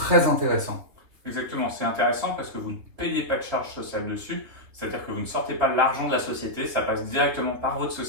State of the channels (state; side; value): late; left; 3.4 ms